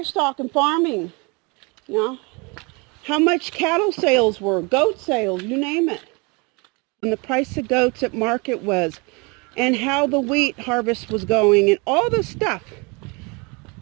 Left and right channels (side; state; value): left; quieter; 29.3 dB